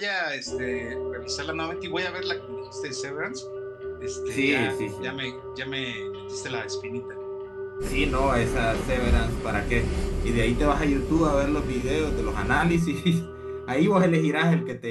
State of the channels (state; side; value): identical; both; correlation 1.00